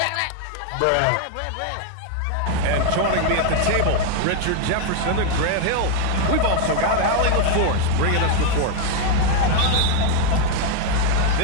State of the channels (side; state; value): both; different; correlation 0.01